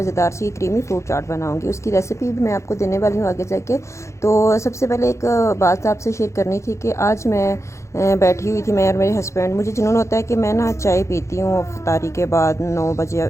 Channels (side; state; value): right; late; 0.14 ms